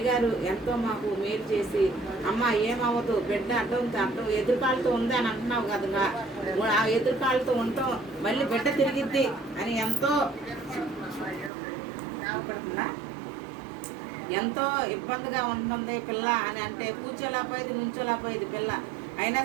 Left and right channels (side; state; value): left; drops out; at 11.5 s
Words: ఎంతో మాకు మేలు చేసి, అమ్మ ఏమవ్వదు, బిడ్డ అడ్డం ఎదురుకాలతో ఉంది అని అంటున్నావు కదా, ఆ ఎదురుకాలతో ఉంటాం, మళ్ళీ బిడ్డ తిరిగిద్ది అని ఎంతో ఇబ్బందిగా ఉంటుంది పిల్ల అని అంటే, కూర్చోలేకపోయేది, నుంచోలేకపోయేది పిల్ల. అయినా